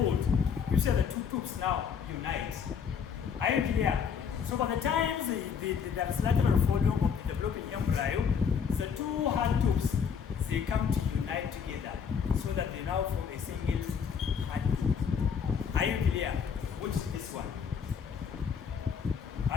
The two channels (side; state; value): right; quieter; 7.0 dB